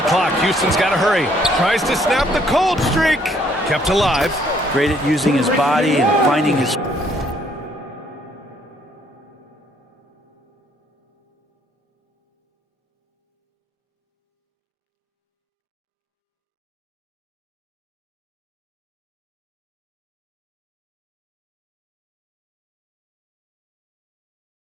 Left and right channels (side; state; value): both; normal; correlation 0.66